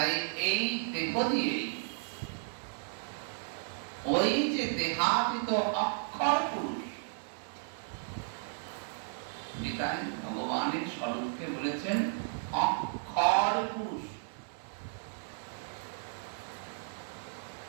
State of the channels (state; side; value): silent; left; digital silence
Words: এই দেহ দিয়ে ওই যে দেহাতীত অক্ষর পুরুষ, গীতায় ভগবানের স্বরূপকে বলেছেন অক্ষর পুরুষ।